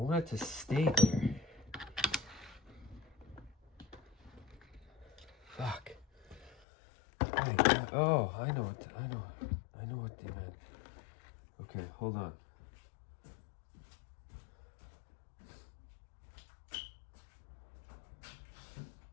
it to stay there. Fuck. Oh, my God. Oh, I know what they meant. Okay, hold on.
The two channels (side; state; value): right; drops out; at 6.6 s